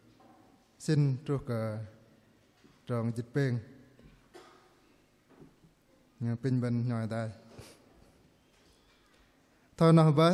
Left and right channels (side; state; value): both; identical; correlation 1.00